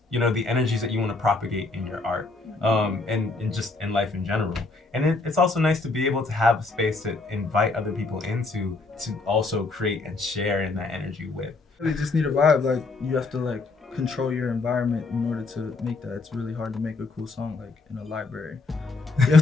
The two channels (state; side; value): quieter; right; 3.7 dB